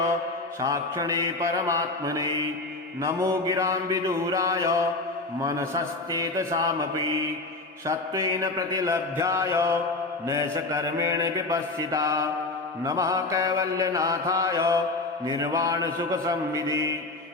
साक्षिणे परमात्मने नमो गिरां विदूराय मनसश्चेतसामपि सत्त्वेन प्रतिलभ्याय नैषकर्मेण विपश्चिता नमः कैवल्यनाथाय निर्वाणसुखसंविदे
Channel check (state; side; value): quieter; right; 3.1 dB